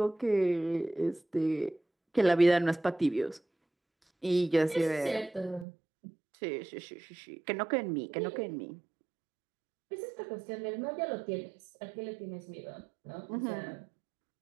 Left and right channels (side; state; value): left; drops out; at 5.7 s